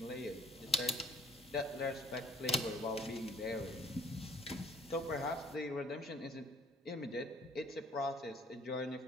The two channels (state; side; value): normal; both; correlation 0.55